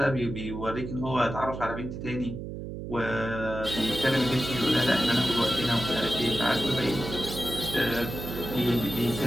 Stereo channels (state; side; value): noise; right; hum, 8 dB below the sound